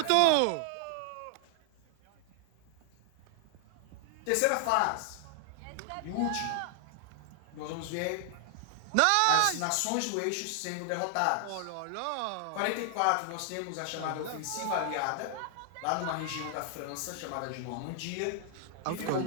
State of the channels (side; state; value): both; different; correlation 0.00